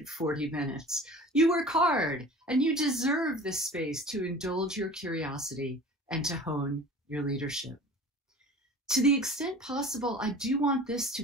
40 minutes. You work hard, and you deserve this space to indulge your curiosity and to hone your leadership. To the extent possible, I do want this to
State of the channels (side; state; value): both; normal; correlation 0.42